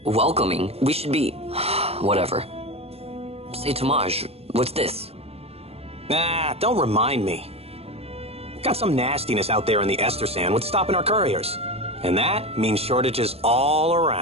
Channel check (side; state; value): left; late; 0.29 ms